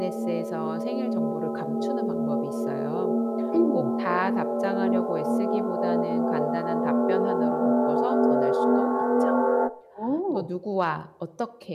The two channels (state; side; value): identical; both; correlation 1.00